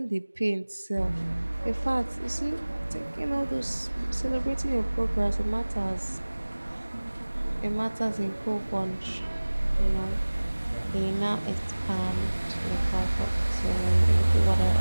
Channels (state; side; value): inverted; both; correlation -1.00